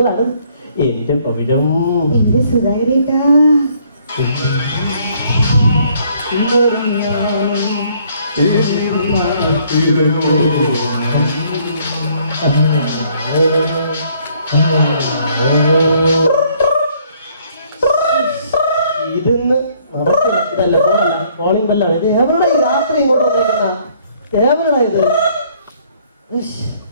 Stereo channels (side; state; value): both; inverted; correlation -0.64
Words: എന്റെ പവിഴം, എന്റെ സുധാകരേട്ടാ. ഇതിന്ന് നടക്കില്ല. ഇതല്ല ഫോണല്ല, കോളിംഗ് ബെല്ലാണ്. ഇത് എവരുടെ ഈ രാത്രി ഇങ്ങോട്ട് വന്നേക്കുന്ന എവരുടെ ഇത്?